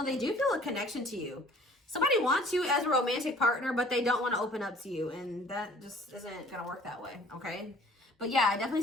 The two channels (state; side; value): normal; both; correlation 0.52